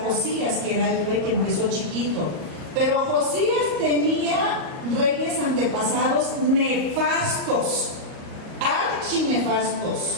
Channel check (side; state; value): left; late; 38 ms